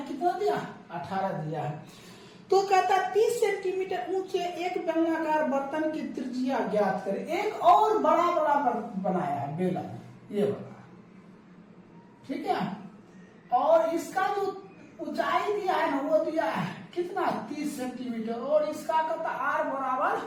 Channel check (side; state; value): both; identical; correlation 1.00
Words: कितना दिया 18 दिया है। तो कहता 30 सेंटीमीटर ऊंचे एक बेलनाकार बर्तन की त्रिज्या ज्ञात करें। एक और बड़ा बनाया है बेलन, ये बड़ा, ठीक है। और इसका जो ऊंचाई दिया है ना वो दिया है कितना 30 सेंटीमीटर, और इसका कहता R बराबर